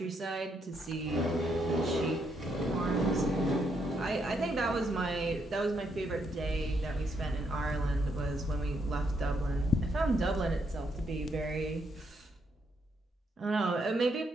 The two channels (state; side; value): normal; both; correlation 0.76